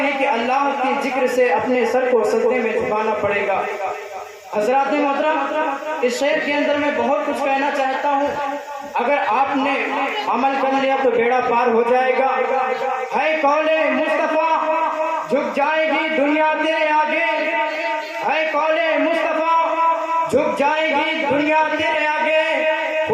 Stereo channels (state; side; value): identical; both; correlation 1.00